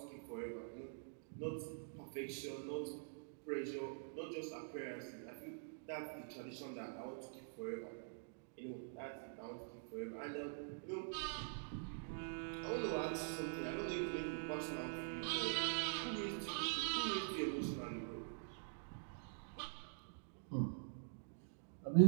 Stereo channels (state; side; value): silent; left; digital silence